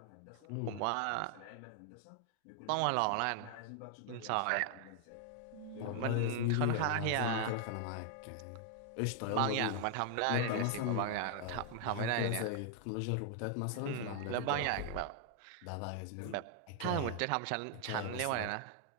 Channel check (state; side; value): different; both; correlation 0.00